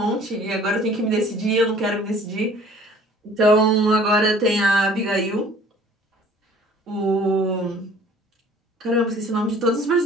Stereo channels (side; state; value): both; normal; correlation 0.51